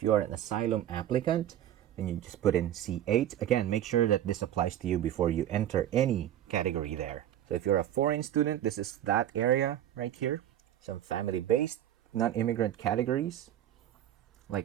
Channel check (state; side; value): quieter; left; 11.6 dB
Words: you are an asylum applicant, then you just put in C8. Again, make sure that this applies to you before you enter any category there. So if you're a foreign student, this is that area right here. Some family-based non-immigrant categories,